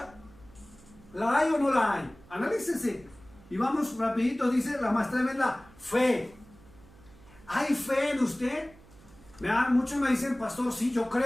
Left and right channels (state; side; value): noise; right; hum, 24 dB below the sound